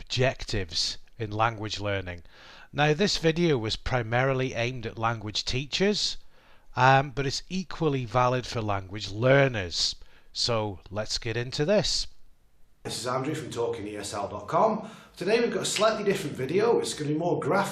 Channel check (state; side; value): identical; both; correlation 1.00